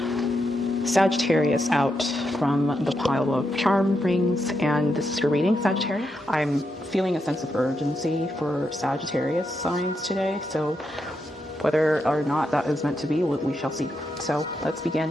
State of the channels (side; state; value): both; normal; correlation 0.83